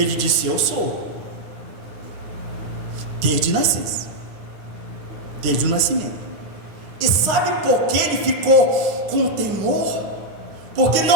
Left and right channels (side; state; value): left; late; 9.9 ms